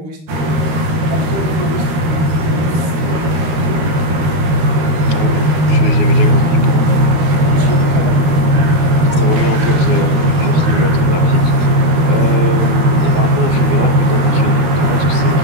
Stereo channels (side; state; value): left; late; 13 ms